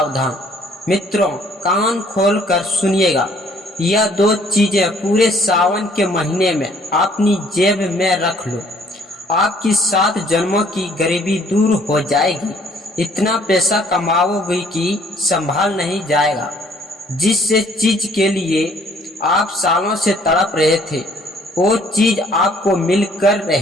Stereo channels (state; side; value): normal; both; correlation 0.61